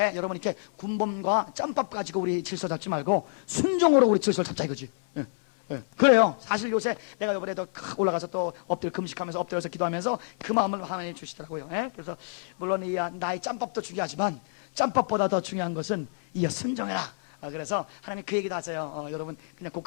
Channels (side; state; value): right; silent; 59 dB below the other